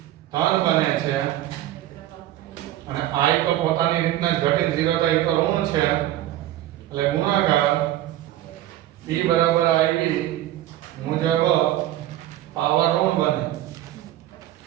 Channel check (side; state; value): left; quieter; 13.7 dB